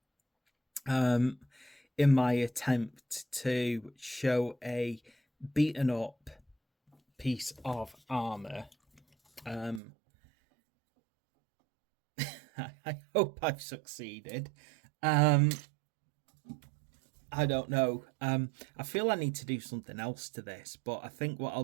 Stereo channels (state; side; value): drops out; left; at 9.8 s